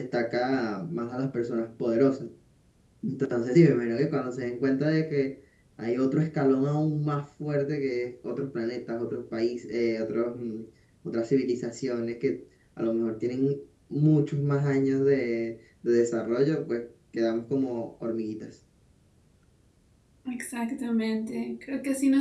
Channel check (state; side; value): identical; both; correlation 1.00